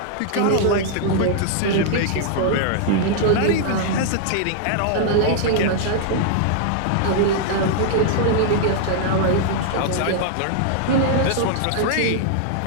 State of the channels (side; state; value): both; different; correlation -0.01